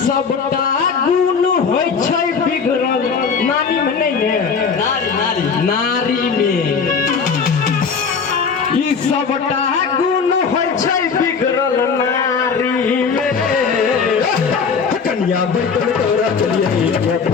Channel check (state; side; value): quieter; right; 5.7 dB